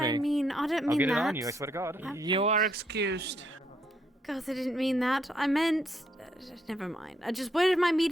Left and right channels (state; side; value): normal; both; correlation 0.73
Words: me. I mean. I don't mean I'll get that. it on you. I swear to God. You are excused. God, I didn't mean that. I meant. Never mind. I just. Where am I